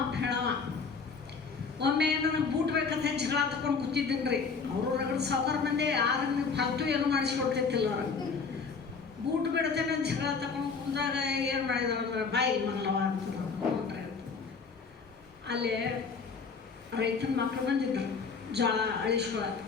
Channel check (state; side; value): quieter; right; 5.1 dB